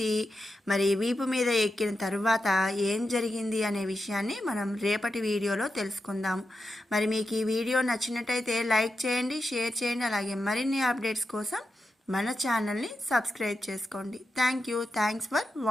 మరి వీపు మీద ఎక్కిన తర్వాత ఏం జరిగింది అనే విషయాన్ని మనం రేపటి వీడియోలో తెలుసుకుందాము. మరి మీకు ఈ వీడియో నచ్చినట్టయితే లైక్ చేయండి, షేర్ చేయండి. అలాగే మరిన్ని అప్డేట్స్ కోసం మన ఛానల్ని సబ్స్క్రైబ్ చేసుకోండి. Thanks for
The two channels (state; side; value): normal; both; correlation 0.89